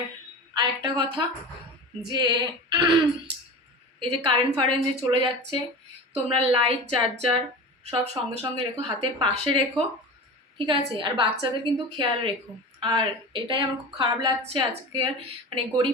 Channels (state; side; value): normal; both; correlation 0.31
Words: আরেকটা কথা যে এই যে কারেন্ট যে চলে যাচ্ছে, তোমরা লাইট চার্জার সব সঙ্গে সঙ্গে রেখো, হাতের পাশে রেখো, ঠিক আছে? আর বাচ্চাদের কিন্তু খেয়াল রেখো। আর এটাই আমার খুব খারাপ লাগছে আজকের মানে